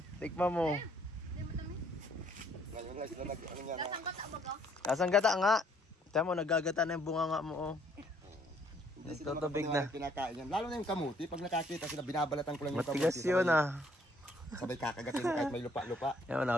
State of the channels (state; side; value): normal; both; correlation 0.64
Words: Tikman mo. Hindi mo tamis. Ngayon lang sila ano yan. Lasang gata ba ka? Kasang gata nga. Tiyan mo, nagagata na yung bunga nga mo oh. Hindi sila Nagtutubig makapaniwala na. pinakain yan. Lalo na yung kamuti. Pag nakakita sila, binabalatan ko lang yung Matigas kamuti. yun ah. Sabay kakagatin kahit may lupa-lupa. Yan,